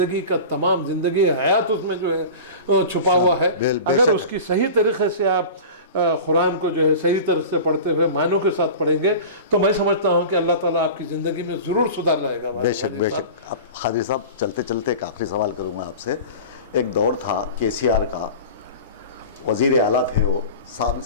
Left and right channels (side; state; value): both; inverted; correlation -0.35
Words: کا تمام زندگی حیات اس میں جو ہے چھپا ہوا ہے. اگر اس کی صحیح طریقے سے آپ قرآن کو جو ہے صحیح طرح سے پڑھتے ہوئے معنوں کے ساتھ پڑھیں گے تو میں سمجھتا ہوں کہ اللہ تعالیٰ آپ کی زندگی میں ضرور سدھار لائے گا. بے شک بے شک. اب قادری صاحب چلتے چلتے ایک آخری سوال کروں میں آپ سے. ایک دور تھا KCR کا، وزیر اعلیٰ تھے وہ،